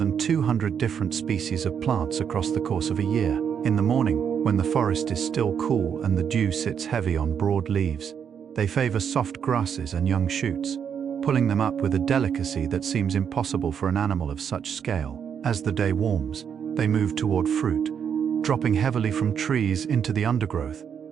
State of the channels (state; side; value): quieter; left; 7.7 dB